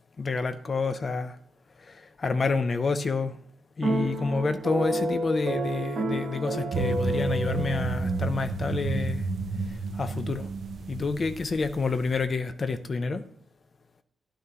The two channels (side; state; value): both; normal; correlation 0.83